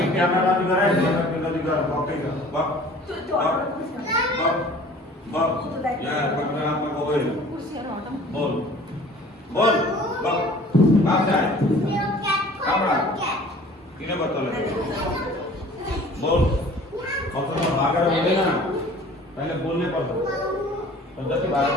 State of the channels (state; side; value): normal; both; correlation 0.48